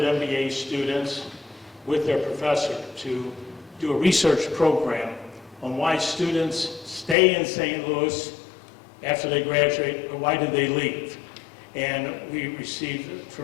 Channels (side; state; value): right; drops out; at 7.2 s